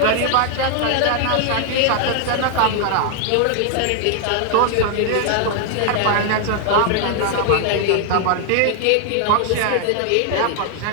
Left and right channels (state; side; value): different; both; correlation 0.00